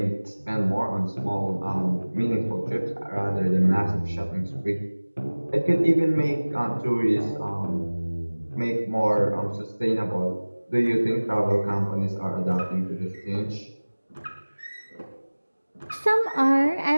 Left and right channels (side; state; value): both; inverted; correlation -1.00